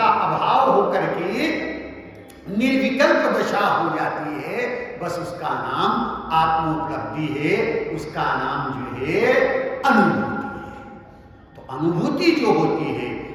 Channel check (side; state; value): both; identical; correlation 1.00